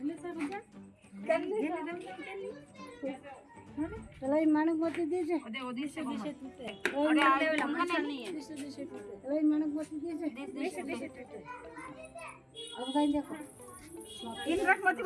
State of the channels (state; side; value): identical; both; correlation 1.00